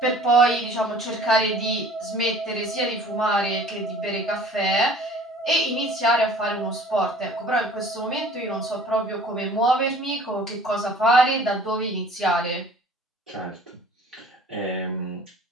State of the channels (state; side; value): normal; both; correlation 0.49